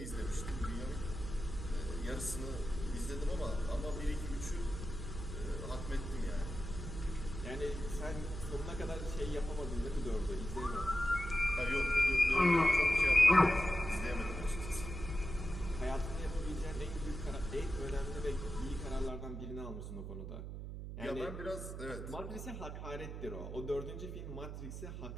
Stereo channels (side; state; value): right; noise; hum, 7 dB below the sound